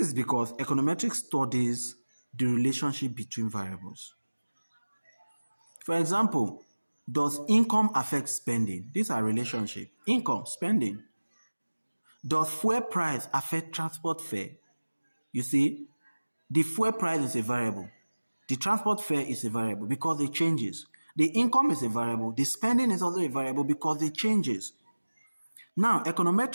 because econometrics studies the relationship between variables. For example, does income affect spending? These are relationships. Income, spending. Does fuel price affect transport fare? You see, the fuel price is a variable. The transport fare is a variable because it changes. The income is a variable. The spending is also a variable because it changes. Now,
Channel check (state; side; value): inverted; both; correlation -1.00